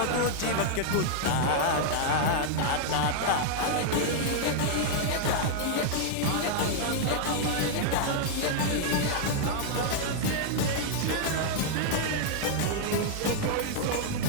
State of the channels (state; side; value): different; both; correlation 0.00